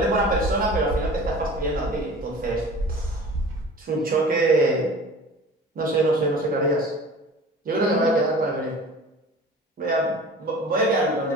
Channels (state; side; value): normal; both; correlation 0.41